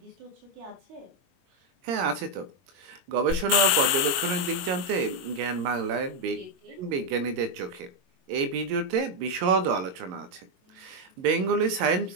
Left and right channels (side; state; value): left; late; 22 ms